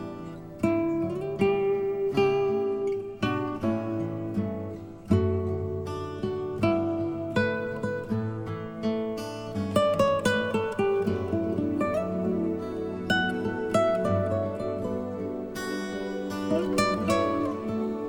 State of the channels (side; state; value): both; identical; correlation 1.00